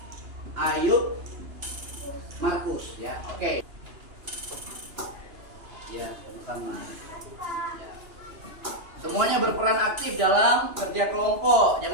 Ayub, Markus ya. Oke. Ya, sama-sama. Ya. Semuanya berperan aktif dalam kerja kelompok.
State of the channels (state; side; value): late; left; 2.9 ms